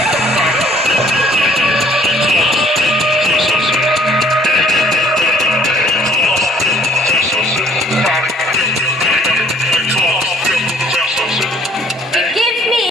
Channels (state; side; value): normal; both; correlation 0.59